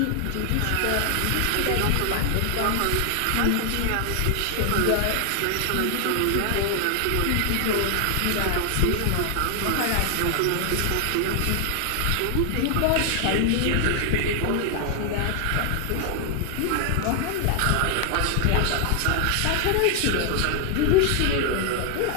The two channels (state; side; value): different; both; correlation 0.00